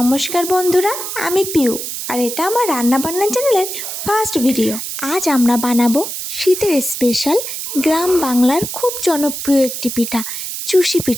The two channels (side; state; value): right; noise; hiss, 6 dB below the sound